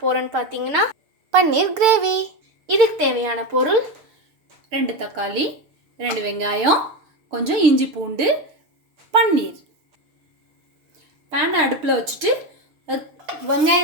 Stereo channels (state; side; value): late; left; 6.6 ms